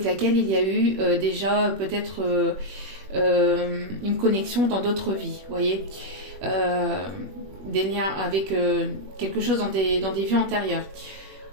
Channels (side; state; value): left; late; 21 ms